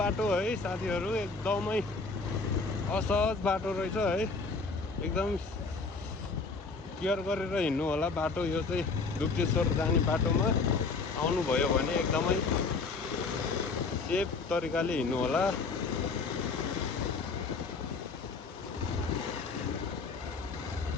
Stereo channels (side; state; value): right; quieter; 4.2 dB